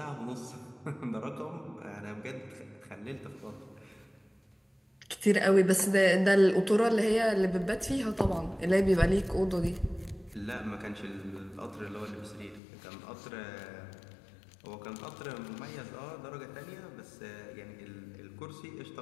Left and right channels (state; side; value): drops out; right; at 12.6 s